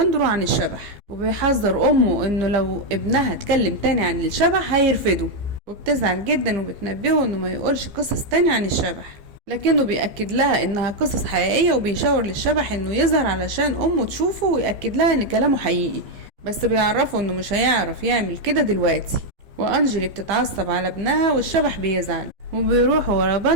عن الشبح، وبيحذر امه انه لو ابنها اتكلم تاني عن الشبح هيرفضه. وبتزعل جدا وبتنبهه انه ما يقولش قصص تاني عن الشبح، لكنه بيأكد لها انها قصص حقيقية. وبيشاور للشبح انه يظهر علشان امه تشوفه ويأكد لها ان كلامه حقيقي، بس بيعرفه انه مش هيعرف يعمل كده دلوقتي. وانجلي بتتعصب على ابنها والشبح بيزعل، وبيروح ورا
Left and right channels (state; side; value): late; left; 15 ms